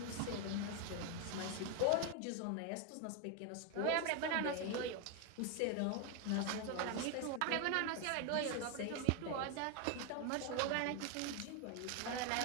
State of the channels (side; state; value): both; different; correlation 0.01